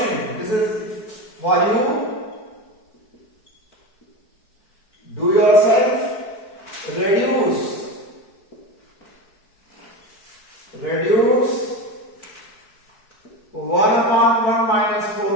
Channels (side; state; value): right; late; 4.7 ms